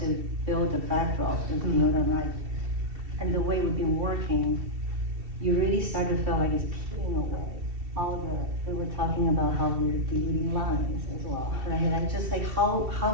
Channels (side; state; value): left; late; 2.7 ms